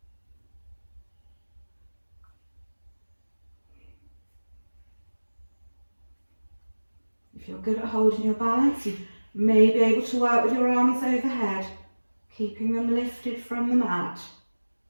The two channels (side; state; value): both; inverted; correlation -1.00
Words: If you're good at holding your balance, you may be able to work with your arms overhead, keeping them lifted from the mat.